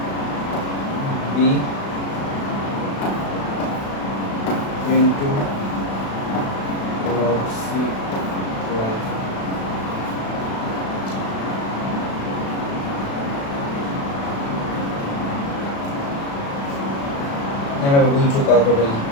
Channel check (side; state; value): right; late; 36 ms